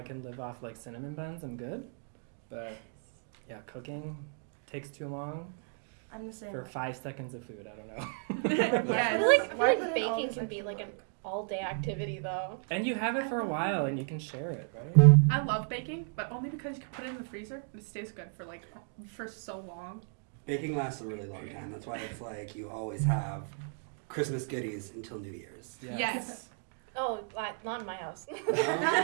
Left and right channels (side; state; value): left; silent; 55 dB below the other